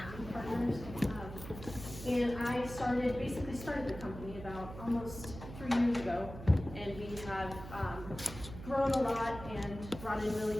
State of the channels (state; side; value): noise; right; hum, 12 dB below the sound